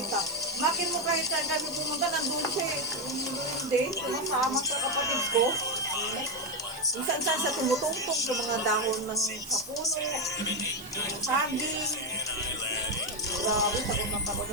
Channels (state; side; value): noise; right; hiss, 18 dB below the sound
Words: Makin mo kahit saan kami pumunta, nandun siya eh. Hindi, sumasama sa kapatid ko. Minsan-san siya tumutungtong sa mga dahon ng kapuno, saging. Grabe, takot na takot